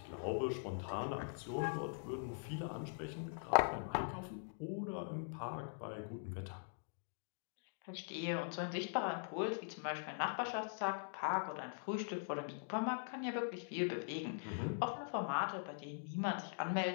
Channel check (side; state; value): right; silent; digital silence